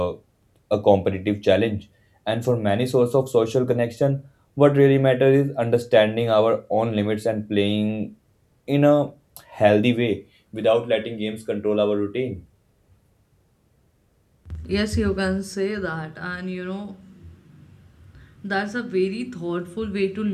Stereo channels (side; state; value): both; identical; correlation 1.00